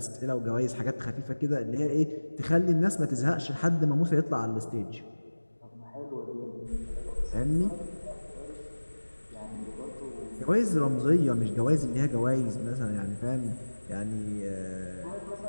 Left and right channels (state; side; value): inverted; both; correlation -1.00